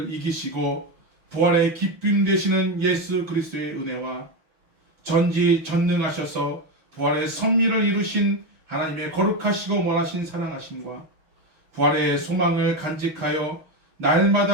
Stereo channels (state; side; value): late; left; 6.3 ms